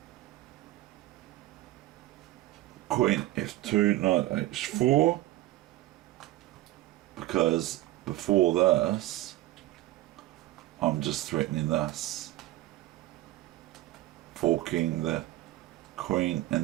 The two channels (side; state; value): left; quieter; 16.2 dB